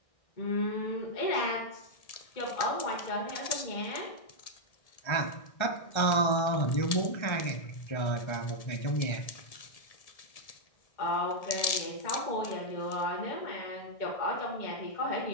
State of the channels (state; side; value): late; right; 1.7 ms